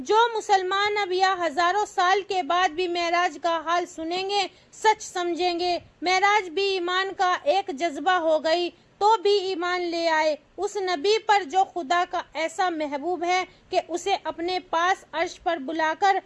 مسلمان اب یا ہزاروں سال کے بعد بھی معراج کا حال سنیں گے، سچ سمجھیں گے۔ معراج بھی ایمان کا ایک جذبہ ہو گئی تو بھی ایمان لے آئے اس نبی پر جو خدا کا ایسا محبوب ہے کہ اسے اپنے پاس عرش پر بلا کر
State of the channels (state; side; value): identical; both; correlation 1.00